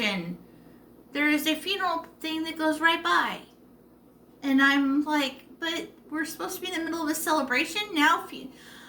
There is a funeral thing that goes right by, and I'm like, but we're supposed to be in the middle of a celebration now.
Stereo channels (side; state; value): both; identical; correlation 1.00